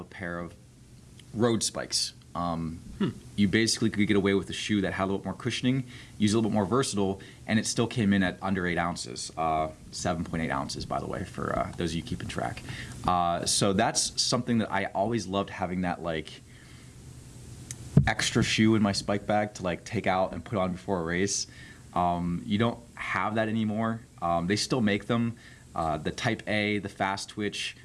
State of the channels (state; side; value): identical; both; correlation 1.00